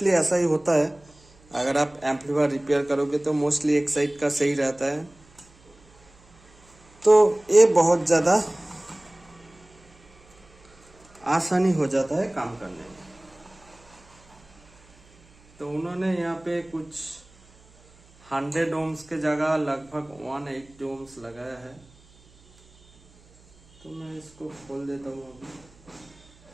ऐसा ही होता है। अगर आप एम्पलीफायर रिपेयर करोगे तो मोस्टली एक साइड का सही रहता है। तो ये बहुत ज़्यादा आसानी हो जाता है काम करने में। तो उन्होंने यहाँ पे कुछ 100 ओम्स के जगह लगभग 180 ओम्स लगाया है। तो मैं इसको खोल देता हूँ अभी।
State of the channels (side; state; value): right; noise; hum, 28 dB below the sound